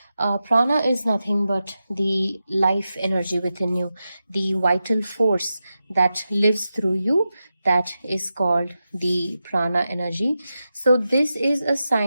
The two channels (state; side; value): inverted; both; correlation -0.91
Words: Prana is nothing but the life energy within you, the vital force that lives through you. That is called the Prana energy. So this is a